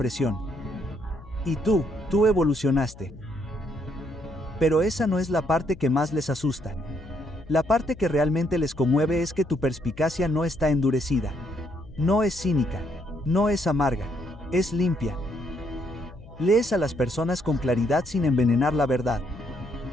Y tú evolucionaste. Pero esa no es la parte que más les asusta. La parte que realmente les conmueve es que tu perspicacia no está endurecida. No es cínica. No es amarga. Es limpia. Lees a las personas con claridad sin envenenar la verdad.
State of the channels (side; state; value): left; noise; hum, 19 dB below the sound